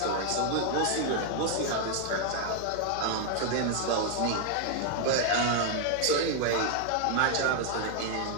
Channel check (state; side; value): different; both; correlation 0.00